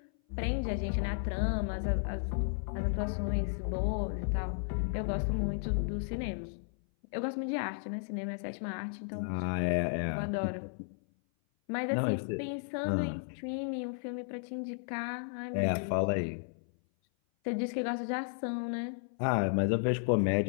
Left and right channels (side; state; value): right; silent; 55 dB below the other